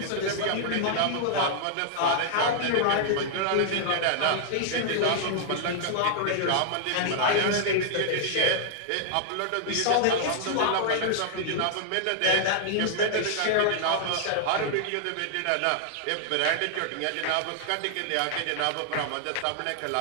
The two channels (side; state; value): both; different; correlation -0.01